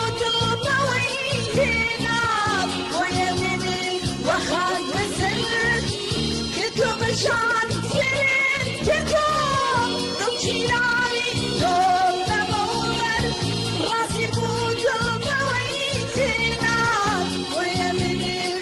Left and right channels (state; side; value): identical; both; correlation 1.00